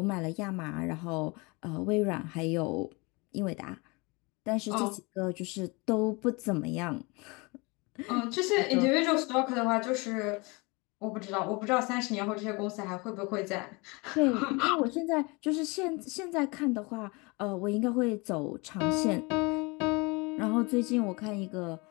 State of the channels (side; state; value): right; quieter; 27.2 dB